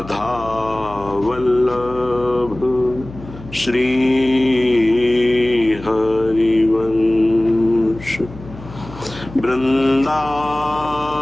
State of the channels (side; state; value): left; noise; hum, 16 dB below the sound